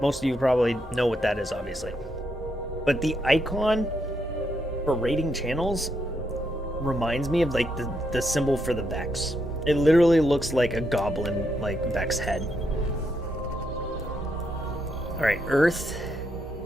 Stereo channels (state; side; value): normal; both; correlation 0.79